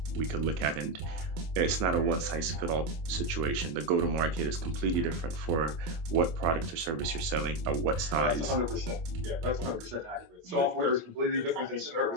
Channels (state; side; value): late; left; 25 ms